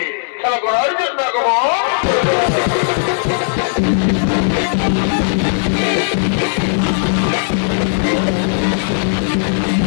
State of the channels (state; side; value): silent; right; 66 dB below the other